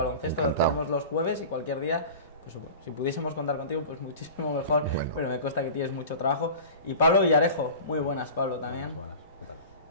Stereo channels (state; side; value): inverted; both; correlation -0.36